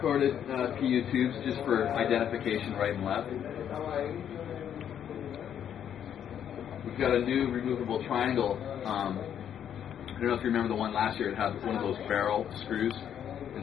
PU tubes just for identification right and left. We've got a new removable triangle. I don't know if you remember the one last year. It had one of those barrel screws,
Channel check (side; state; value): right; quieter; 9.3 dB